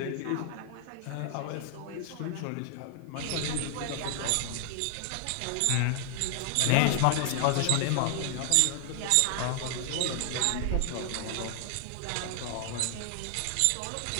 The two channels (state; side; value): different; both; correlation 0.00